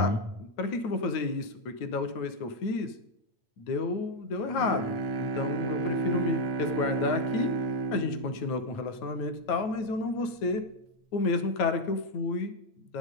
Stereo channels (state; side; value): late; right; 8.8 ms